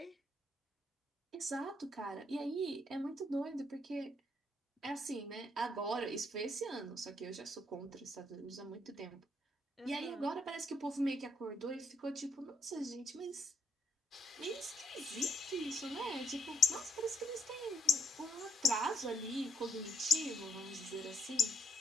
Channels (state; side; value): normal; both; correlation 0.72